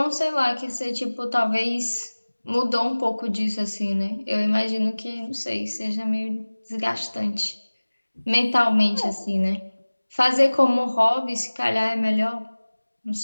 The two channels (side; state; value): both; inverted; correlation -1.00